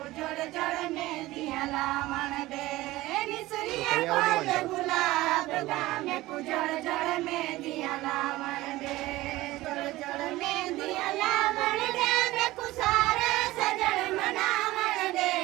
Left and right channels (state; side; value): quieter; left; 18.0 dB